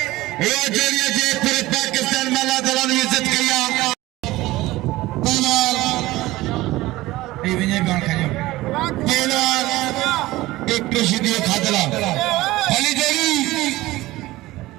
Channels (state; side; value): quieter; left; 18.2 dB